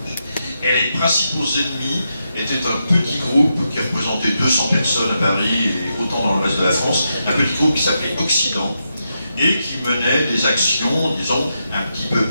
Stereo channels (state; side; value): inverted; both; correlation -0.85